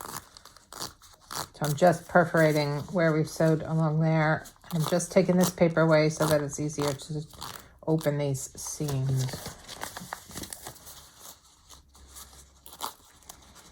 I'm just perforating where we've sewed along there. I'm just taking this paper away so that it's easier to open these seams.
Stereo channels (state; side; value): identical; both; correlation 1.00